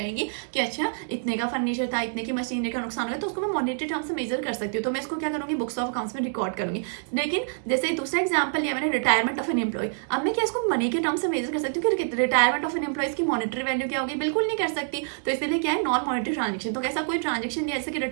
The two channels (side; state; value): left; silent; digital silence